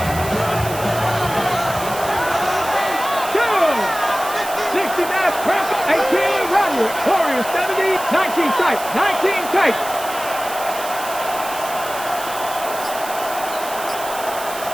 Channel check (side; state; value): right; noise; hiss, 11 dB below the sound